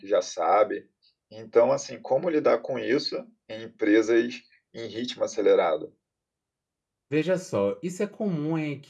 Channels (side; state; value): both; identical; correlation 1.00